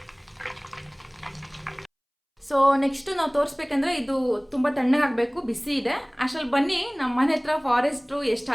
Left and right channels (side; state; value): both; identical; correlation 1.00